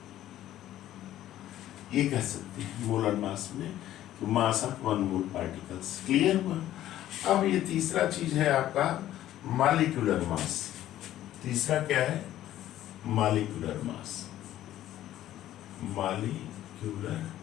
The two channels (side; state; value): right; quieter; 13.1 dB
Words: ये कह सकते हैं मोलर मास में कि mass of 1 mole particles. Clear हुआ। अब ये तीसरा चीज है आपका मॉलिक्यूलर मास। तीसरा क्या है, मॉलिक्यूलर मास। मॉलिक्यूलर